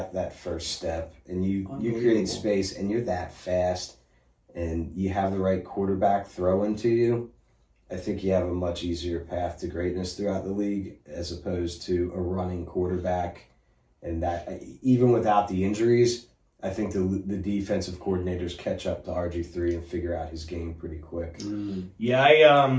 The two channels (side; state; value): both; identical; correlation 1.00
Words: that first step and you create space and you're that fast and you have the right quarterback throwing to you, I think you have a much easier path to greatness throughout the league as opposed to a running quarterback. And that, even without the injuries, I think the defensive coordinators catch up to RG3 and figure out his game pretty quick. Yeah,